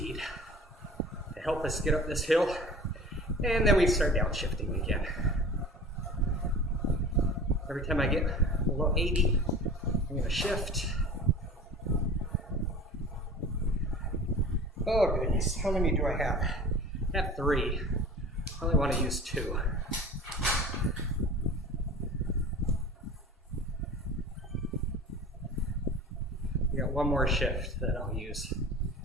to help us get up this hill. And then we start downshifting again. Every time I get below 80, I'm gonna shift. Oh goodness, how many do I have? I have 3. I only want to use 2. I got one more shift that I'll use.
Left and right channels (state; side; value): normal; both; correlation 0.40